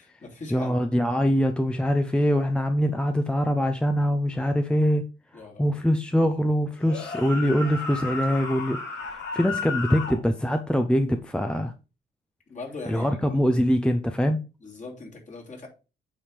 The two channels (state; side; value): normal; both; correlation 0.91